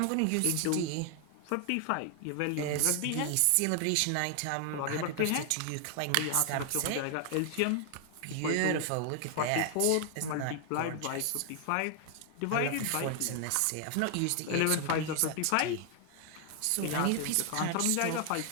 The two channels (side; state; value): both; different; correlation 0.00